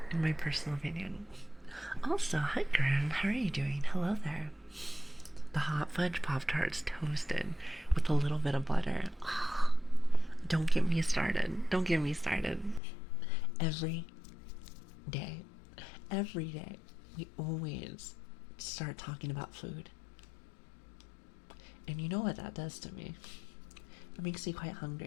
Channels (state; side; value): drops out; right; at 12.8 s